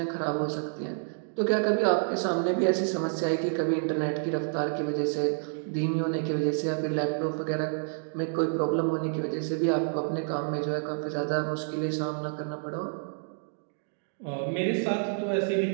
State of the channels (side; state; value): left; silent; digital silence